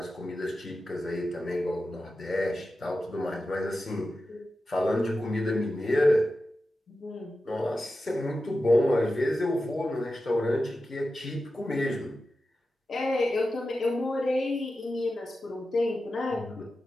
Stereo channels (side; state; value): both; normal; correlation 0.92